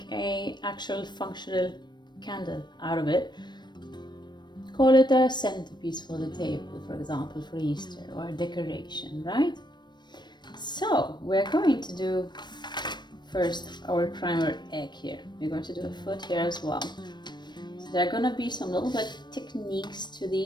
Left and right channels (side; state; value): right; late; 0.22 ms